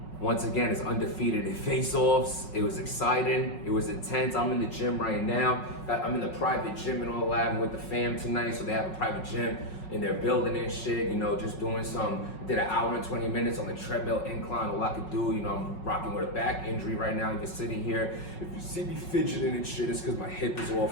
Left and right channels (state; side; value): late; right; 5.4 ms